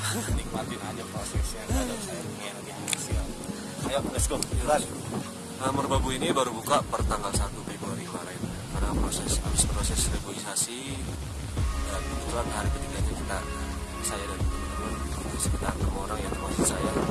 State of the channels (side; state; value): both; identical; correlation 1.00